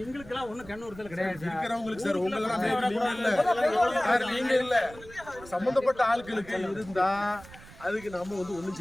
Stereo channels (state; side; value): noise; right; rumble, 19 dB below the sound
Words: எங்களுக்கெல்லாம் ஒன்றும் கண்ணூர்த்தல் கிடையாது இருக்கிறவங்களுக்கு சார். உங்களெல்லாம் நீங்க இல்ல சம்பந்தப்பட்ட ஆட்களுக்கு இருந்தா அதுக்கு நம்ம வந்து ஒண்ணும்